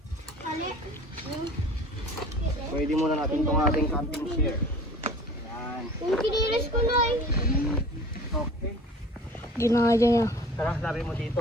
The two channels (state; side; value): normal; both; correlation 0.44